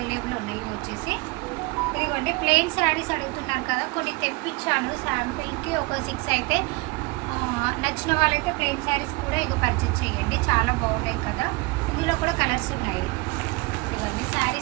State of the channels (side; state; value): left; quieter; 25.2 dB